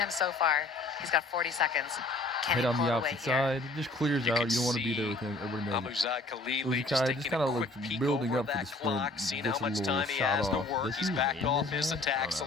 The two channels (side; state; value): right; quieter; 3.1 dB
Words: so far. He's got 40 seconds. Can Head he on pull the it opposite away here? side. It just clears You out. can You don't want to be see there with him. Everybody knows it. Amouzad Khalili Musukaev just kind of taking a like quick peek building over up for the that sprint. clock, seeing Gets a how much little time he shot has to off. work. Does He's he backed win off this his match? I attacks a